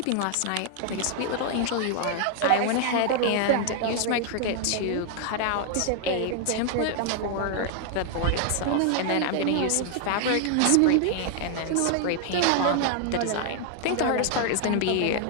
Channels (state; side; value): different; both; correlation 0.00